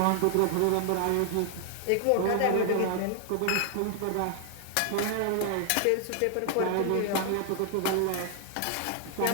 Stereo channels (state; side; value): different; both; correlation 0.00